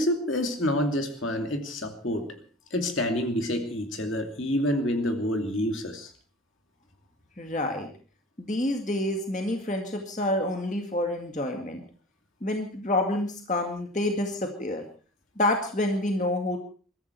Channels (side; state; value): both; normal; correlation 0.37